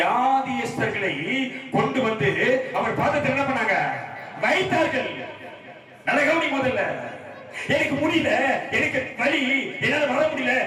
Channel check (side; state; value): both; identical; correlation 1.00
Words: கொண்டு வந்து அவர் பாதத்தில் என்ன பண்ணாங்க? வைத்தார்கள். நல்ல கவனி. முதல்ல எனக்கு முடியல, எனக்கு வலி, என்னால வர முடியல.